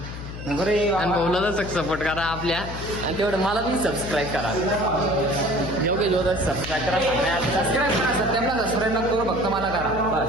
आणि भाऊला तर सपोर्ट करा आपल्या, आणि तेवढं मला पण सबस्क्राईब करा. योग्य जोर सबस्क्राईब करा, सबस्क्राईब करा. सत्याला सबस्क्राईब नको करू, फक्त मला करा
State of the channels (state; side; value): noise; left; hum, 10 dB below the sound